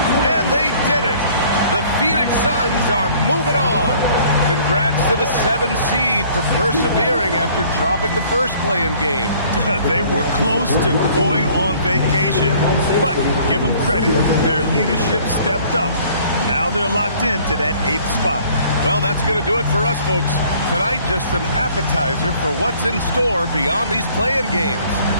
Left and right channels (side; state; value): both; inverted; correlation -0.56